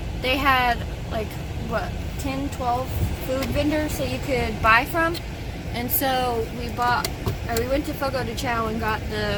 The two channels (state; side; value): identical; both; correlation 1.00